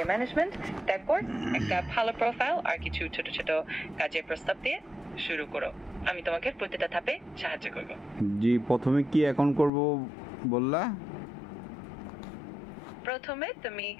ম্যানেজমেন্ট। তারপর একটা ভালো প্রোফাইল আর কিছু ছোট ছোট কাজের প্রস্তাব দিয়ে শুরু করো। আমি তোমাকে প্রতিটা ধাপে সাহায্য করব। জি, প্রথমে কি অ্যাকাউন্ট করব বললা? প্রথমে তুমি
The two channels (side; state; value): right; drops out; at 9.7 s